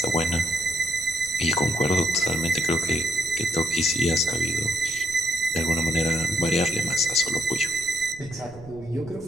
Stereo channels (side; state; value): right; noise; rumble, 19 dB below the sound